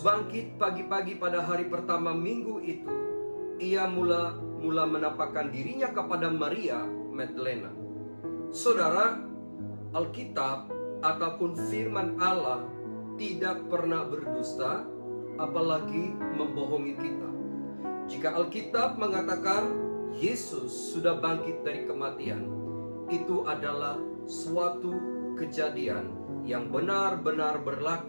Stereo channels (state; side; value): inverted; both; correlation -1.00